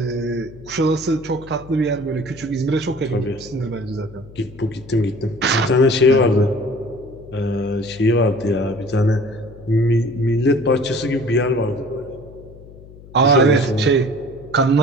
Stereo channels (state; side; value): noise; left; hum, 20 dB below the sound